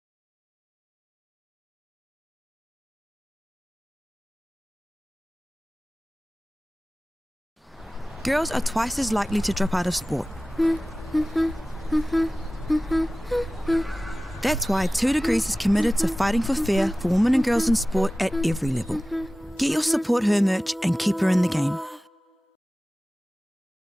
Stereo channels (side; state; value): both; normal; correlation 0.97